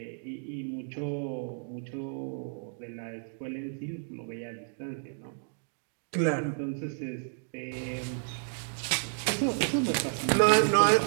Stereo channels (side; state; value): left; silent; digital silence